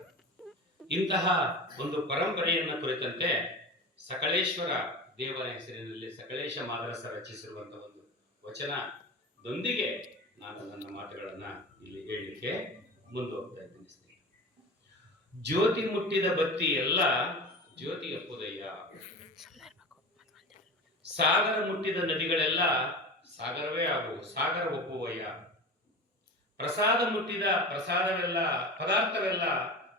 ಇಂತಹ ಒಂದು ಪರಂಪರೆಯನ್ನ ಕುರಿತಂತೆ ಸಕಲೇಶ್ವರ ದೇವರ ಹೆಸರಿನಲ್ಲಿ ಸಕಲೇಶ ಮಾದರಸ ರಚಿಸಿರುವಂತಹ ಒಂದು ವಚನದೊಂದಿಗೆ ನಾನು ನನ್ನ ಮಾತುಗಳನ್ನ ಇಲ್ಲಿ ಹೇಳಲಿಕ್ಕೆ ಮುಂದುವರ್ತಾ ಇದ್ದೀನಿ. ಜ್ಯೋತಿ ಮುಟ್ಟಿದ ಬತ್ತಿ ಎಲ್ಲ ಜ್ಯೋತಿ ಅಪ್ಪುದಯ್ಯ, ಸಾಗರ ಮುಟ್ಟಿದ ನದಿಗಳೆಲ್ಲ ಸಾಗರವೇ ಆಗುವು, ಸಾಗರ ಒಪ್ಪುವಯ್ಯ. ಪ್ರಸಾದ ಮುಟ್ಟಿದ ಪ್ರಸಾದವೆಲ್ಲ ಪದಾರ್ಥವೆಲ್ಲ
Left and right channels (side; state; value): both; normal; correlation 0.30